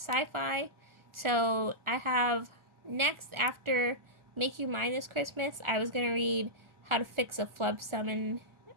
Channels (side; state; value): left; late; 1.4 ms